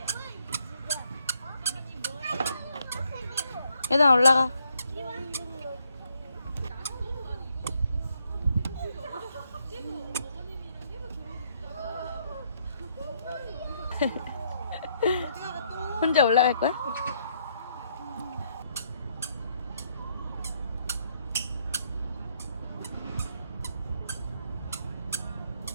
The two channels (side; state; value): both; inverted; correlation -0.72